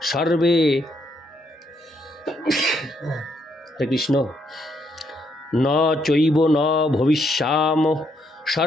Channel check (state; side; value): normal; both; correlation 0.74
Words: সর্বে। হরে কৃষ্ণ। ন চৈব ন ভবিষ্যাম